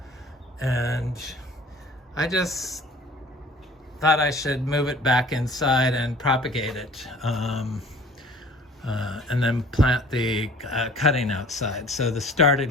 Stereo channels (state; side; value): normal; both; correlation 0.49